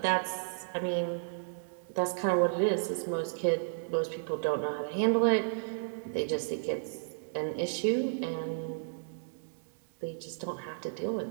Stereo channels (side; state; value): left; silent; digital silence